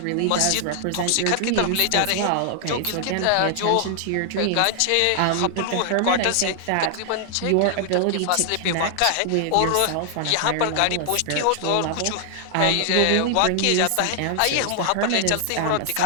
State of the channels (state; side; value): different; both; correlation 0.00